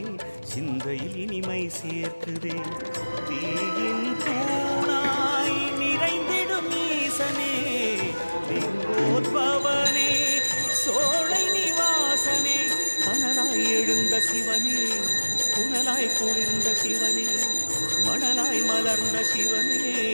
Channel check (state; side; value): inverted; both; correlation -1.00